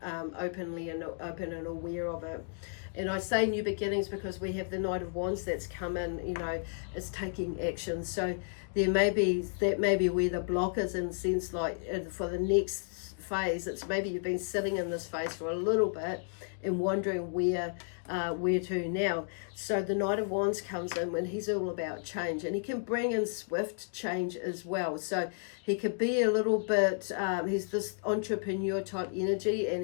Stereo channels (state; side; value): silent; right; digital silence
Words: open and aware of it. And I say new beginnings because we have the Knight of Wands that's come in, is taking action. So that may be where the block is, in the sense like, for the next phase, it's maybe you've been sitting in this phase for a little bit and wondering where to now. So the Knight of Wands comes in when he's all about change, and he can bring in swift change as well. So he could be a little bit, he's this entrepreneur type energy,